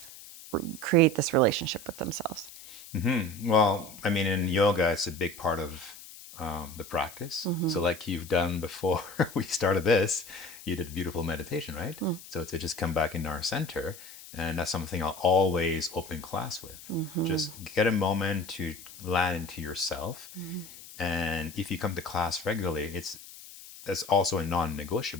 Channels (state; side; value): noise; left; hiss, 17 dB below the sound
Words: create this relationship with themselves? Well, I mean, in yoga, it's a big part of the practice. Mm-hmm. So, like you've done before we started this, you did beautiful meditation, right? Mm. So, to just come back into our center. And that's something I'll always open class with. Mm-hmm. Just get a moment to land into yourself. Mm-hmm. And if you come to class regularly, that's also a